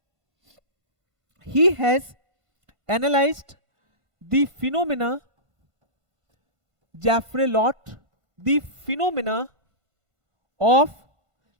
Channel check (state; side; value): late; left; 1.5 ms